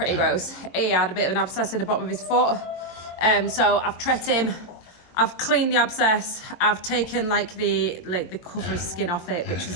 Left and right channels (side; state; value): right; late; 23 ms